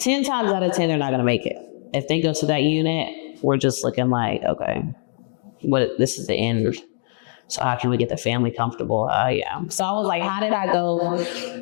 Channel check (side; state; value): right; silent; digital silence